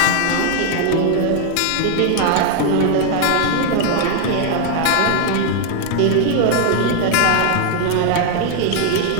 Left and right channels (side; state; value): both; different; correlation 0.00